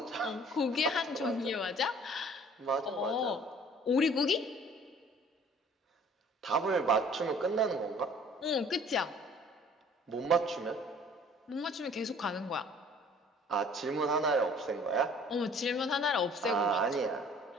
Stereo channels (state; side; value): normal; both; correlation 0.53